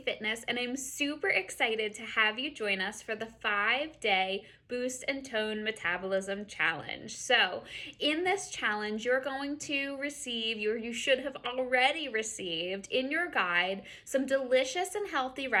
Fitness, and I'm super excited to have you join us for the 5-day Boost and Tone Metabolism Challenge. So, in this challenge, you're going to receive, you should have already received in your guide, some delicious and healthy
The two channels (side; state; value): both; identical; correlation 1.00